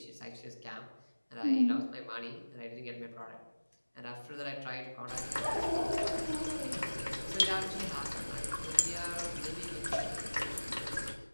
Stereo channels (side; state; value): both; inverted; correlation -1.00